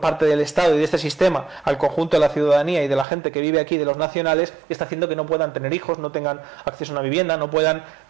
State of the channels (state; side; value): drops out; left; at 3.1 s